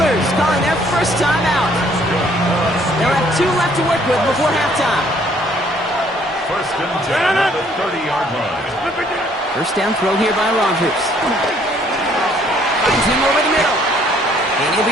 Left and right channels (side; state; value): both; normal; correlation 0.63